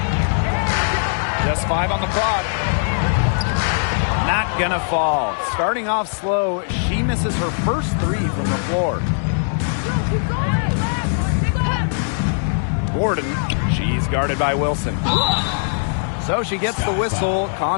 Just 5 on the clock. Not gonna fall. Starting off slow, she misses her first 3 from the floor. Gordon, she's guarded by Wilson. So she gets the whistle.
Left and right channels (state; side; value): silent; right; digital silence